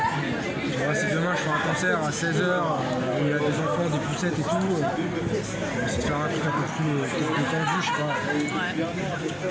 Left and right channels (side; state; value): both; identical; correlation 1.00